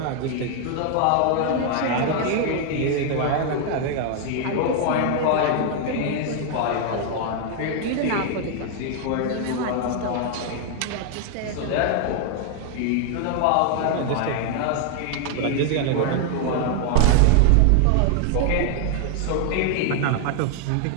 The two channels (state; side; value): different; both; correlation 0.00